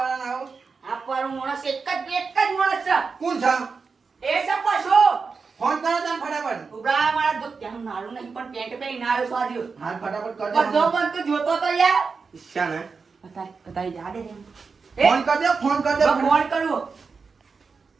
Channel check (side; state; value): left; quieter; 4.9 dB